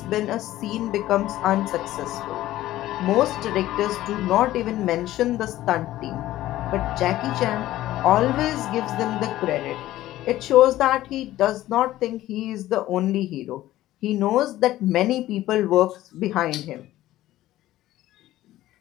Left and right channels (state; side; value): quieter; right; 14.9 dB